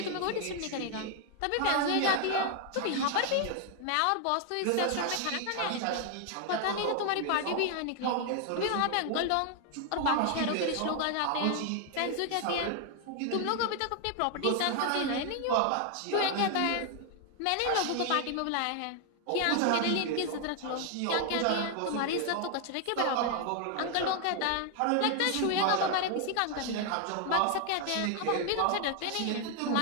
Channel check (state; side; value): different; both; correlation 0.00